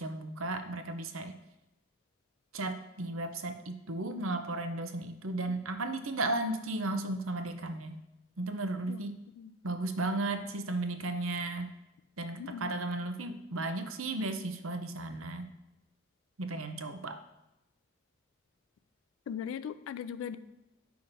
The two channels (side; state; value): both; normal; correlation 0.27